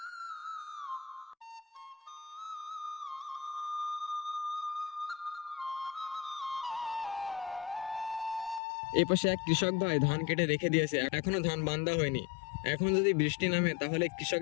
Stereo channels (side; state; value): right; drops out; at 8.6 s